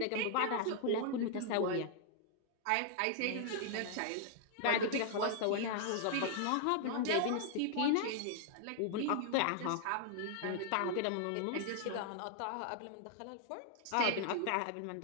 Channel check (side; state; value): both; different; correlation -0.01